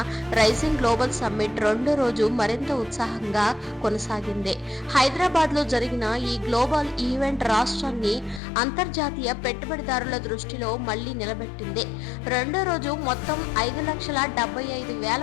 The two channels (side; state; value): right; drops out; at 8.4 s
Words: రైజింగ్ గ్లోబల్ సమ్మిట్ 2వ రోజు మరింత ఉత్సాహంగా కొనసాగింది. హైదరాబాద్ లో జరిగిన ఈ గ్లోబల్ ఈవెంట్ రాష్ట్రాన్ని అంతర్జాతీయ పెట్టుబడిదారుల దృష్టిలో మళ్లీ నిలబెట్టింది. 2వ రోజు మొత్తం